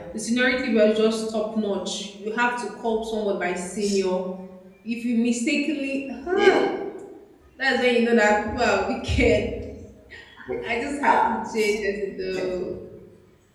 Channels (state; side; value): identical; both; correlation 1.00